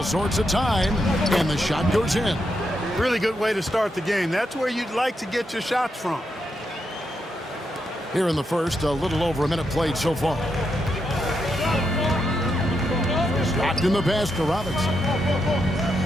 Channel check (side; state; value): both; normal; correlation 0.83